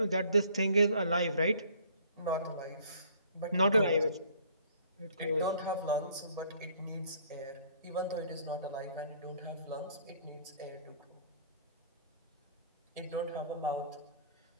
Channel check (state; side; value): inverted; both; correlation -0.57